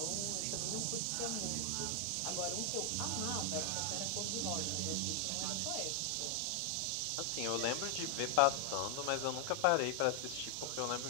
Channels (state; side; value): different; both; correlation 0.00